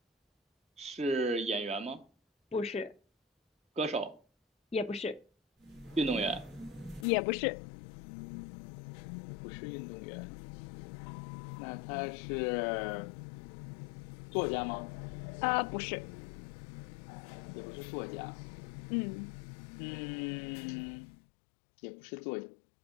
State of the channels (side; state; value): right; drops out; at 7.1 s